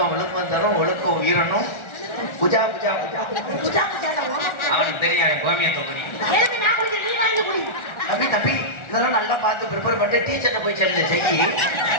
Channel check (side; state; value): right; late; 1.4 ms